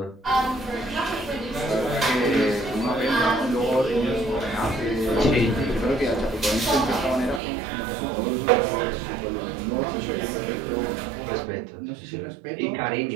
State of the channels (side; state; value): left; drops out; at 7.4 s